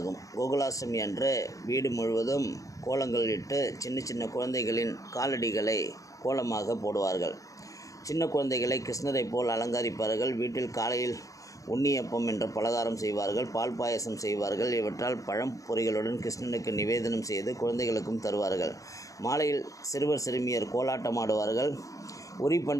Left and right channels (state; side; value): late; right; 0.16 ms